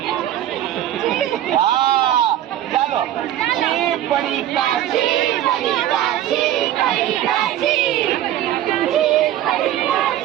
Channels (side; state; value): left; quieter; 12.3 dB